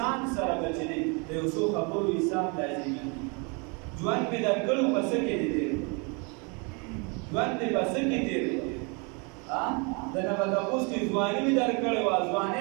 سره به چې دی د یو څو خبرو حساب لازمي ژوند مې درکړو په څه کې دی تېر ژوند مې په څه کې تېر د نه به تپوس کې ځواني مې درکړې وه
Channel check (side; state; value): left; quieter; 32.4 dB